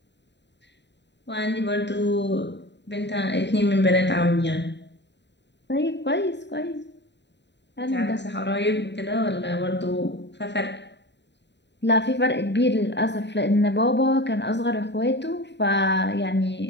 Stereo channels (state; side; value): late; right; 0.51 ms